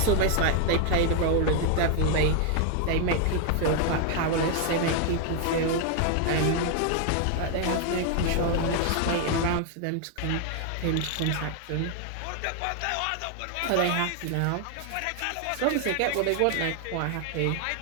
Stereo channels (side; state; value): both; different; correlation 0.00